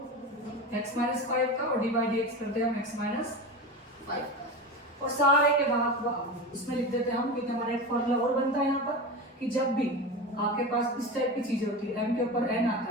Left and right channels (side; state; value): both; normal; correlation 0.25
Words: x माइनस 5 का और डिवाइड dx करते हैं हम x माइनस 5 का। और सारे के बाद इसमें लिख देते हैं हम, क्योंकि हमारा एक फॉर्मूला और बनता है यहाँ पर कि जब भी आपके पास इस टाइप की चीजें होती है, m के ऊपर n आता